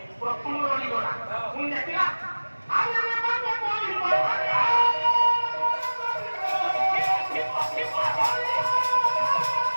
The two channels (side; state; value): both; inverted; correlation -1.00